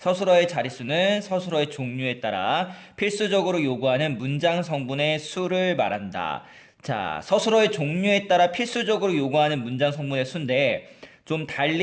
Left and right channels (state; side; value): identical; both; correlation 1.00